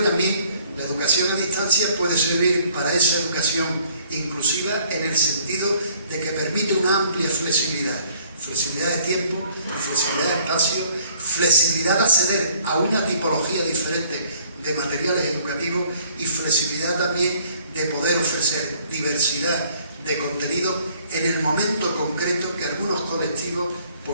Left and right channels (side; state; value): both; inverted; correlation -0.59